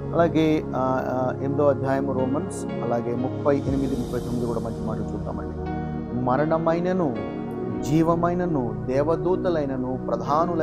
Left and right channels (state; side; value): identical; both; correlation 1.00